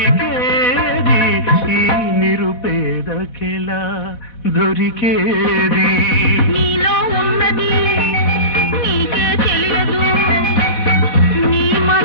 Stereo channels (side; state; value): right; late; 4.1 ms